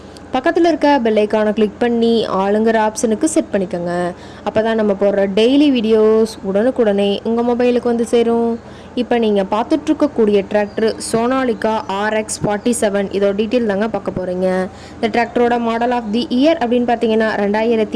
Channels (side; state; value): both; identical; correlation 1.00